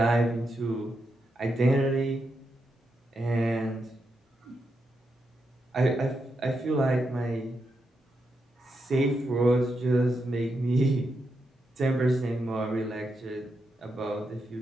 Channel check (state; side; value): normal; both; correlation 0.84